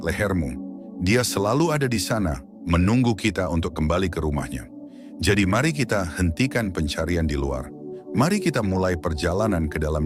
Dia selalu ada di sana, menunggu kita untuk kembali ke rumahnya. Jadi mari kita hentikan pencarian di luar. Mari kita mulai perjalanan ke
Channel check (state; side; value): identical; both; correlation 1.00